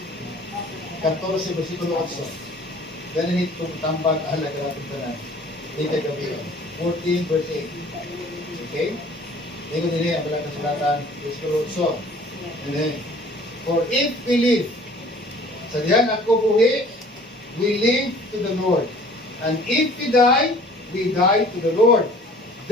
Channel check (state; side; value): normal; both; correlation 0.51